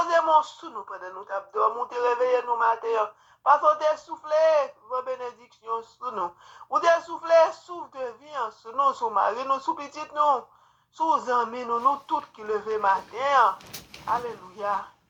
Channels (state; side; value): identical; both; correlation 1.00